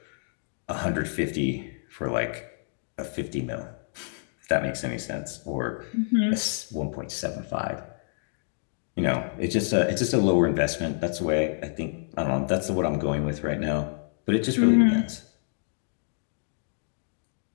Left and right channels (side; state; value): right; silent; digital silence